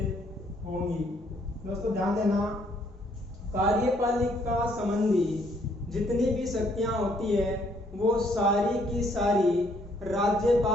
होंगी। दोस्तों, ध्यान देना, कार्यपालिका संबंधी जितनी भी शक्तियां होती है वो सारी की सारी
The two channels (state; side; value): normal; both; correlation 0.68